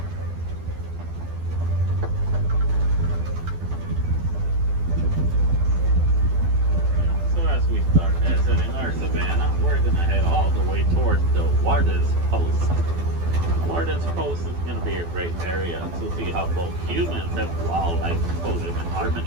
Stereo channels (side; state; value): left; late; 12 ms